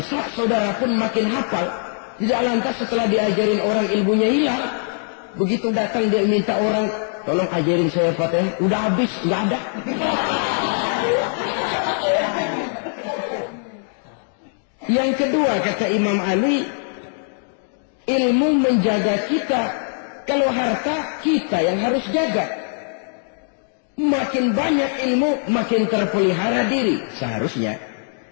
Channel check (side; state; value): right; silent; 61 dB below the other